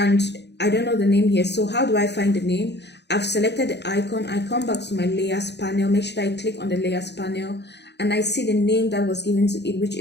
I don't know the name here. So how do I find the name? I've selected the icon. I come back to my layers panel, make sure I click on the layers panel, and I see the name that was given to it, which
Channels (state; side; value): late; right; 0.50 ms